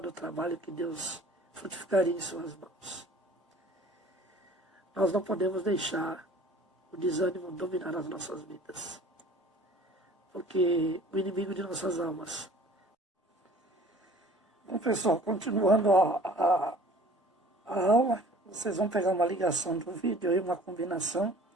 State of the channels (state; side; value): normal; both; correlation 0.49